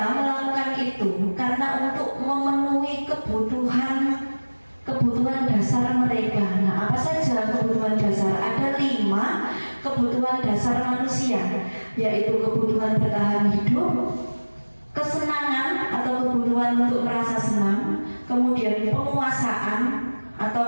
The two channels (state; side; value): inverted; both; correlation -1.00